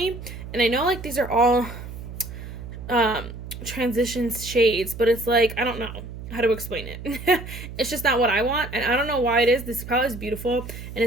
And I know, like, these are all transition shades, but it's like, I don't know how to explain it. It's just not what I want, and I don't know why it is. This palette is beautiful, and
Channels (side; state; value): right; noise; hum, 11 dB below the sound